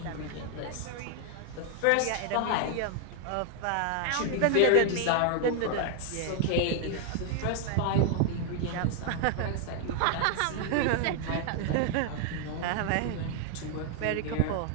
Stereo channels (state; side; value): different; both; correlation 0.00